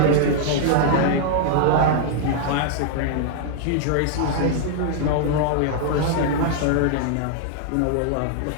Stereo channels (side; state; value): both; different; correlation -0.01